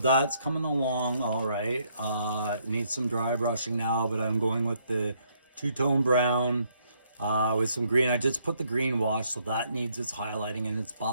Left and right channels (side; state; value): both; inverted; correlation -0.70